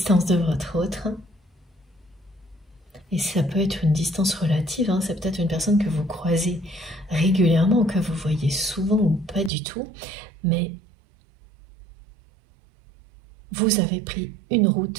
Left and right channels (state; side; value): drops out; left; at 9.5 s